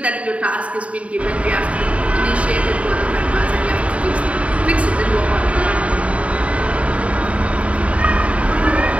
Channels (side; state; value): left; late; 0.065 ms